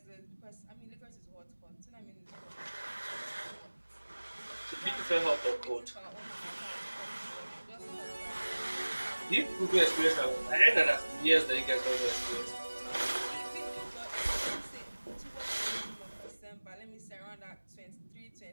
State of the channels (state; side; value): inverted; both; correlation -1.00